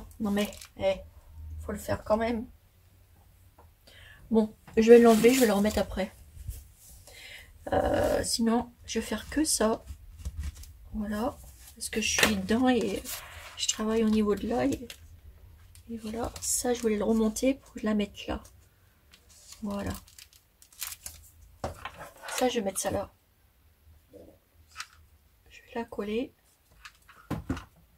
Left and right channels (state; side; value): identical; both; correlation 1.00